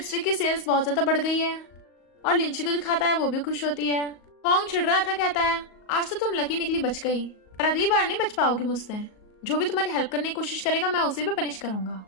की सेल्स बहुत ज्यादा बढ़ गई है और लिंची को दिखाता है, वो भी खुश होती है। होंग चिढ़ रहा था, कहता है आज तो तुम लकी निकली, बच गई, पर अगली बार नहीं बच पाओगी मुझसे, जो भी तुम्हारी हेल्प करने की कोशिश करेगा मैं उसे भी पनिश करूंगा।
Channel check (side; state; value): right; late; 38 ms